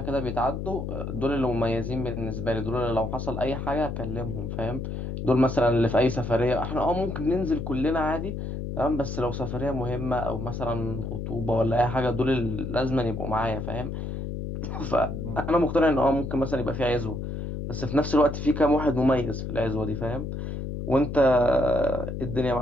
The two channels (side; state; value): left; noise; hum, 5 dB below the sound